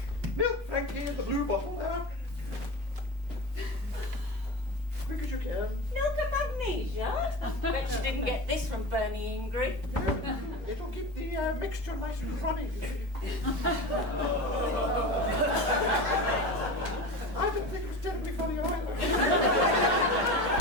Milk, Frankie, in the blue bottle there. Quick as you can. Milk of magnesia? Bet she didn't get this from Bernie Ingrid. It'll keep the mixture nice and runny, you see. I didn't think it was terribly funny either.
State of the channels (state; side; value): normal; both; correlation 0.28